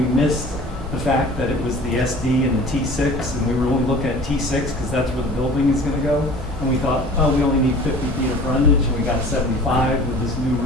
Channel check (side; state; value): both; normal; correlation 0.44